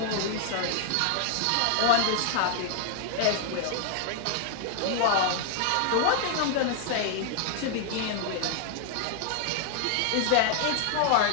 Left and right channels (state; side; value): different; both; correlation 0.00